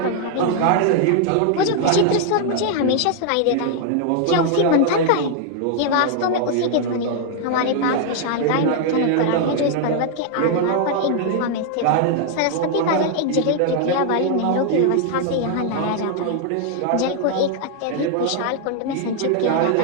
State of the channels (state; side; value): different; both; correlation 0.00